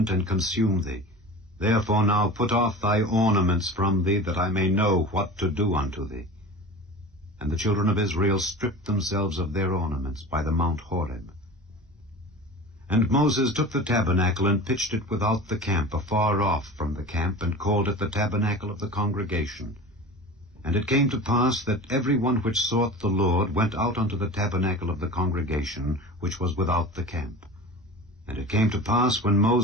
and consume thee. Therefore now put off thy ornaments from thee, that I may know what to do unto thee. And the children of Israel stripped themselves of their ornaments by the Mount Horeb. And Moses took the tabernacle, and pitched it without the camp, afar off from the camp, and called it the tabernacle of the congregation. And it came to pass that every one which sought the Lord went out unto the tabernacle of the congregation, which was without the camp. And it came to pass, when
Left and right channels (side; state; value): both; normal; correlation 0.35